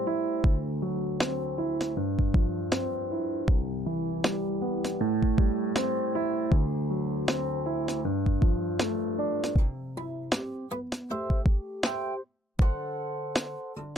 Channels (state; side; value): normal; both; correlation 0.73